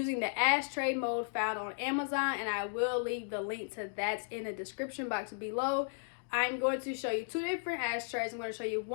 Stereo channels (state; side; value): silent; right; digital silence